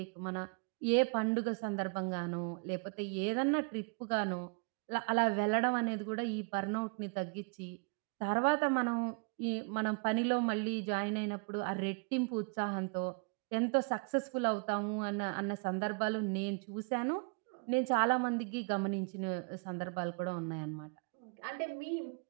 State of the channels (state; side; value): quieter; left; 36.6 dB